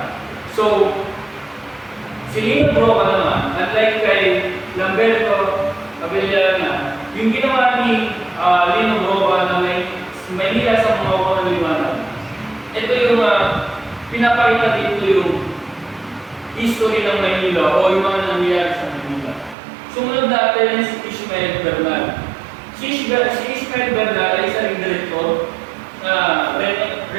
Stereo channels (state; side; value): drops out; left; at 19.6 s